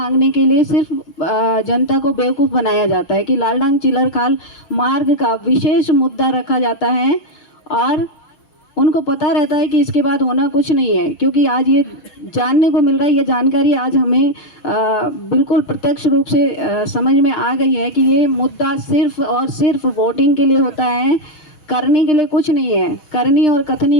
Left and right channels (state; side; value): late; right; 6.6 ms